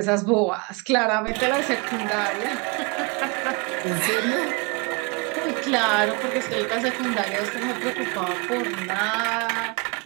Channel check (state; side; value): quieter; left; 30.5 dB